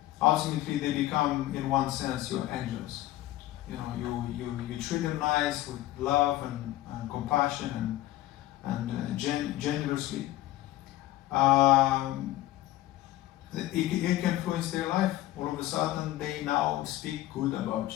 ultimately they become, in one sense, your angels. You treat them nice with love and compassion and generously. It can influence their life. All of a sudden, they now speak good about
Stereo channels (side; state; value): right; quieter; 15.7 dB